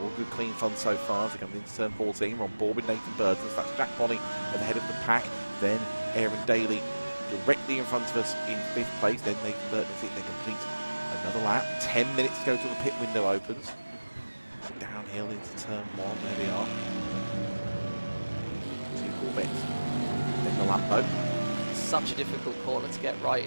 All good, clean fun so far as they come into turn 14. We're on board with Nathan Burton. So that's Jack Bonnie at the head of the pack. Then Aaron Daly directly in front of us in 5th place. Then Nathan Burton, I think they complete another lap. 10 minutes to go till the pit window opens. Downhill into turn 1. There we are. 2 Corvettes. Then the Lambo. Such a difficult corner to get right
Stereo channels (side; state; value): both; inverted; correlation -1.00